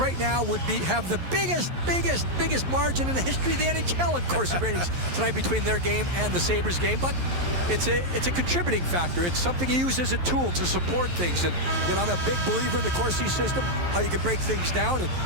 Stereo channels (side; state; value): left; late; 11 ms